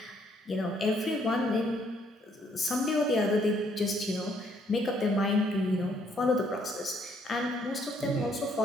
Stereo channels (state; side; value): normal; both; correlation 0.68